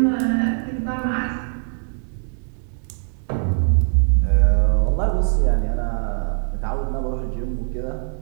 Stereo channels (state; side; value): silent; left; 64 dB below the other